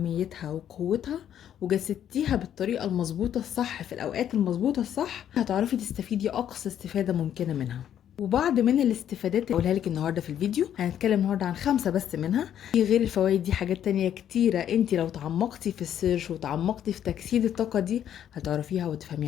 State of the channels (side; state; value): right; quieter; 10.1 dB